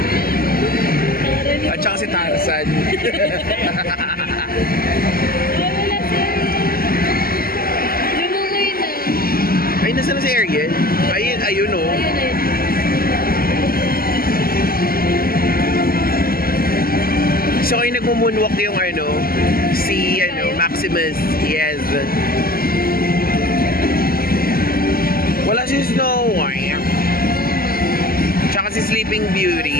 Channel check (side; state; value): right; late; 0.43 ms